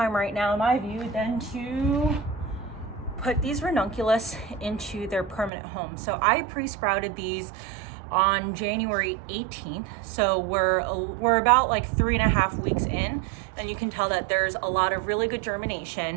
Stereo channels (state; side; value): drops out; left; at 5.5 s